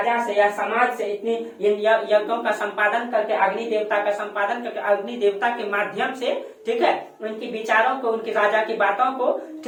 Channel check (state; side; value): identical; both; correlation 1.00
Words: से या समाज से इतनी इन यज्ञों का संपादन करके, अग्नि देवता का संपादन करके, अग्नि देवता के माध्यम से, ठीक है, उनकी विचारों को, उनकी राजा की बातों को,